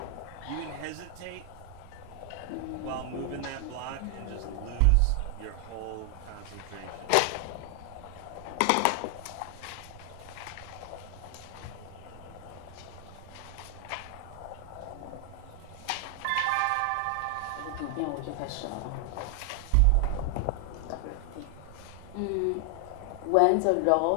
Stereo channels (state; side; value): different; both; correlation 0.00